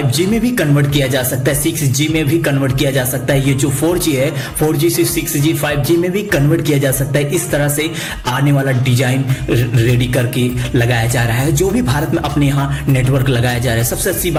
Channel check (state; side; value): identical; both; correlation 1.00